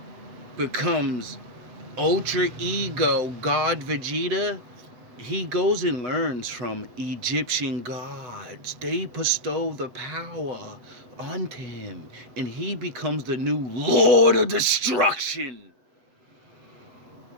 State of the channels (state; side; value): late; left; 7.9 ms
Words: becomes Ultra Ego God Vegeta, he goes and learns from Egyptian gods. They bestow the power onto him, and he becomes the new Lord of Destruction.